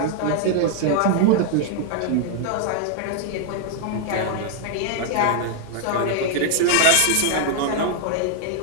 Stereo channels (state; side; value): different; both; correlation -0.01